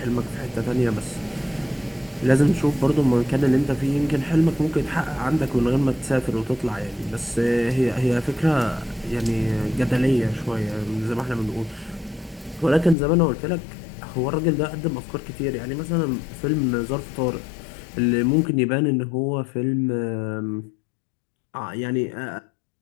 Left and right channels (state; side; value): drops out; right; at 13.0 s